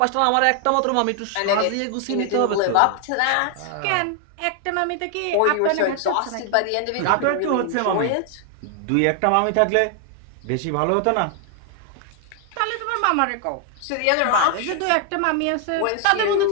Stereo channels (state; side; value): different; both; correlation 0.00